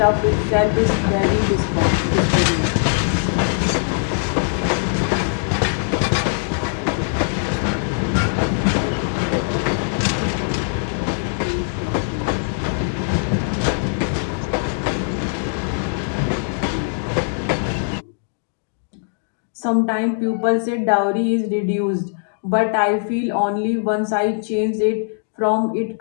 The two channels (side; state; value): right; silent; digital silence